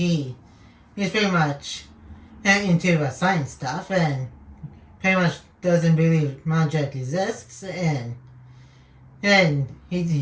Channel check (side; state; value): both; identical; correlation 1.00